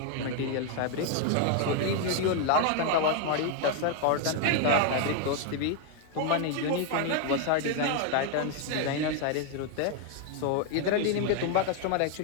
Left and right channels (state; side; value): different; both; correlation 0.00